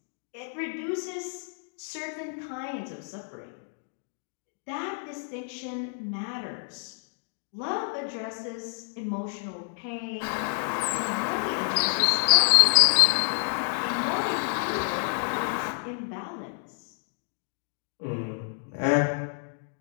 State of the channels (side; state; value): right; silent; 59 dB below the other